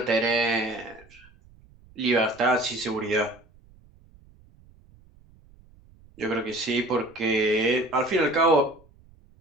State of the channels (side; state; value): right; noise; rumble, 27 dB below the sound